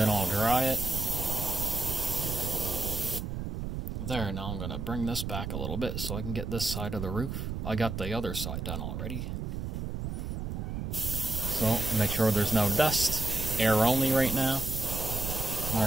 I'll dry it. there, now I'm going to bring this back a little bit so I can get this side of the roof. I got the other side done already. So, make sure there's no dust. Air only right now.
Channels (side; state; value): right; noise; rumble, 4 dB below the sound